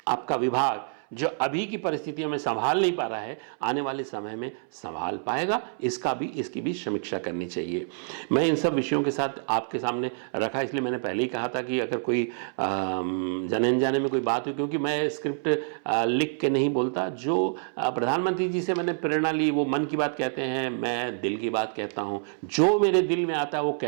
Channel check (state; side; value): silent; left; 60 dB below the other